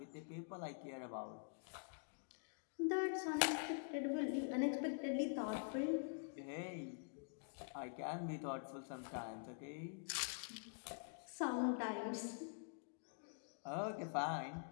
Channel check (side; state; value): right; silent; digital silence